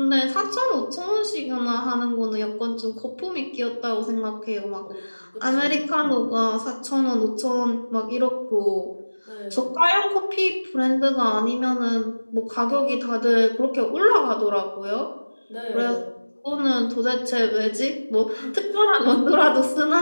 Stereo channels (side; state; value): both; inverted; correlation -1.00